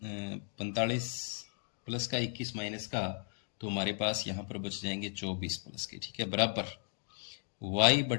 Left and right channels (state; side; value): silent; right; 54 dB below the other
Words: प्लस का 21 माइनस का, तो हमारे पास यहाँ पर बच जाएंगे 24 प्लस के, ठीक है, बराबर